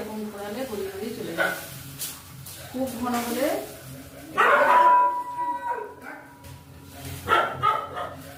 ঘোরালে গড়িয়ে গড়িয়ে চলে যাবে। খুব ঘন হলে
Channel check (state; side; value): identical; both; correlation 1.00